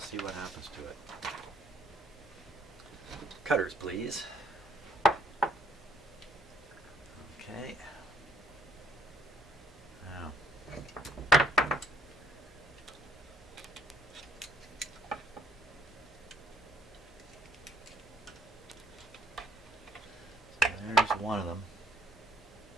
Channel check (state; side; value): normal; both; correlation 0.64